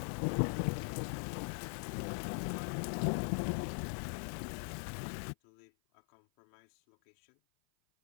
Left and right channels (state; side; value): silent; right; 51 dB below the other